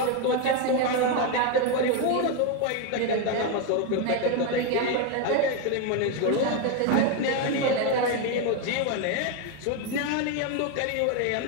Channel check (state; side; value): different; both; correlation 0.02